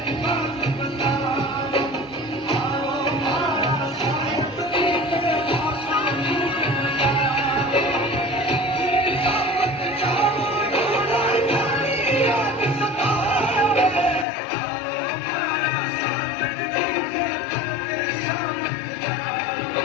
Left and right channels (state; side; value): drops out; right; at 14.2 s